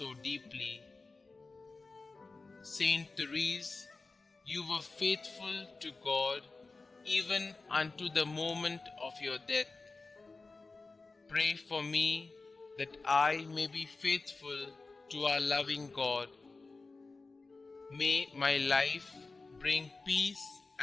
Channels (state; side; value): quieter; right; 3.8 dB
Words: deeply. Saint Therese, you were faithful to God even unto the moment of your death. Pray for me that I may be faithful to our loving God. May my life bring peace